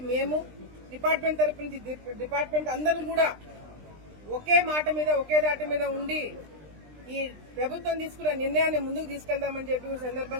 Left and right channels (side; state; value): left; late; 20 ms